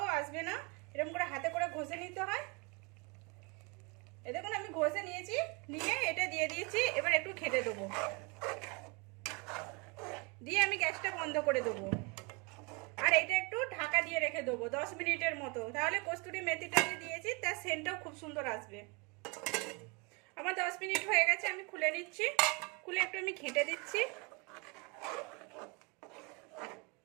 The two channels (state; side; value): quieter; left; 30.2 dB